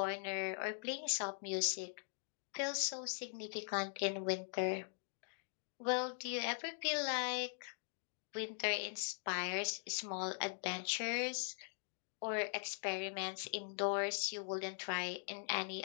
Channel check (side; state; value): right; silent; digital silence